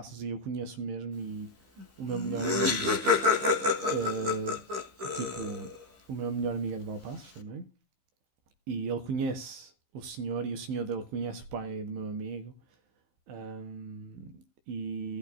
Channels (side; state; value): left; late; 15 ms